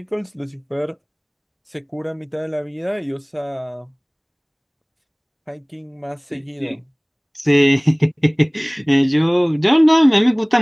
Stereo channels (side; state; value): both; identical; correlation 1.00